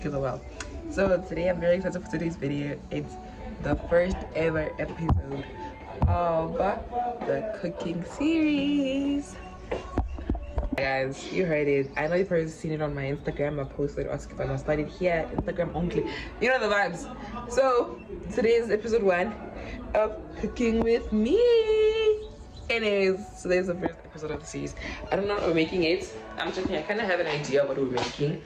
are well. So today I'm very excited for today's video. It's the first ever episode of the cooking series. Guys, you heard it. I know you've already seen it on my Instagram. I posted asking if I must start it here, Instagram only. You know the vibes. So today is episode 1 of cooking with me. Anyways, today's the first episode of the series. I don't know what we're making it. I'm checking. I kind of have an idea of what we're making.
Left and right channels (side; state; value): both; identical; correlation 1.00